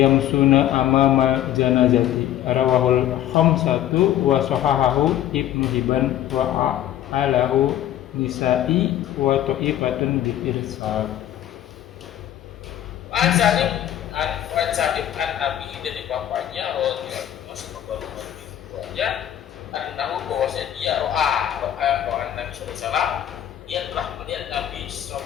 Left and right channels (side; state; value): right; quieter; 11.8 dB